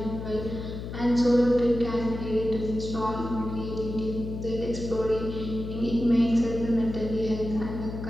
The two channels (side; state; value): left; noise; hum, 8 dB below the sound